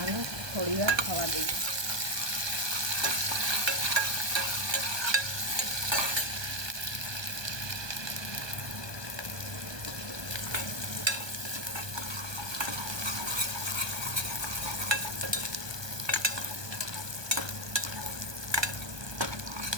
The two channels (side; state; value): left; late; 1.2 ms